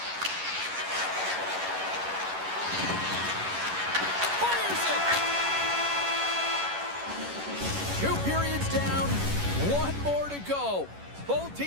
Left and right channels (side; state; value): left; late; 11 ms